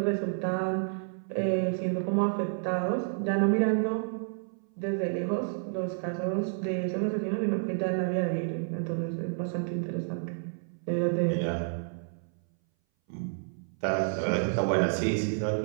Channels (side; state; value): left; silent; 58 dB below the other